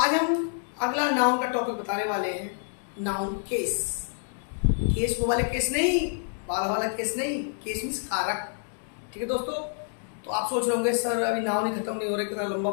हम अगला नाउन का टॉपिक बताने वाले हैं, नाउन केस। केस वो वाले केस नहीं, बाल वाला केस नहीं, केस मीन्स कारक। ठीक है दोस्तों। तो आप सोच रहे होंगे सर अभी नाउन ही खत्म नहीं हो रहा, कितना लंबा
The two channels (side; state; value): right; silent; 60 dB below the other